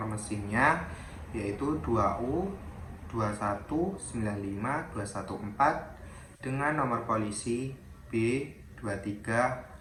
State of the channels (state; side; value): identical; both; correlation 1.00